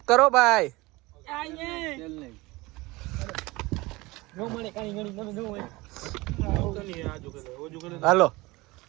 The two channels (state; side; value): quieter; left; 21.8 dB